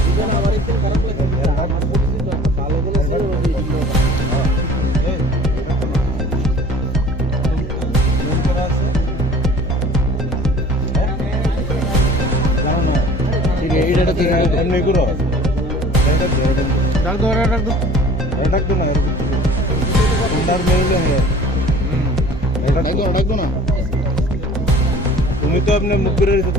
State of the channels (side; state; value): both; normal; correlation 0.47